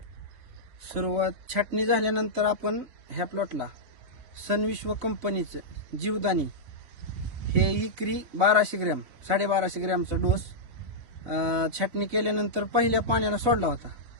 सुरुवात छाटणी झाल्यानंतर आपण ह्या प्लॉटला सनविश्व कंपनीचं जीवदानी हे एकरी 1200 ग्रॅम 1250 ग्रॅमचा डोस छाटणी केल्यानंतर पहिल्या पाण्याला सोडला होता।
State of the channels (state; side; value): late; left; 3.9 ms